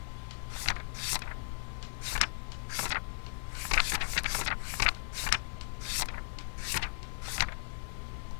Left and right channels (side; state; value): right; silent; 53 dB below the other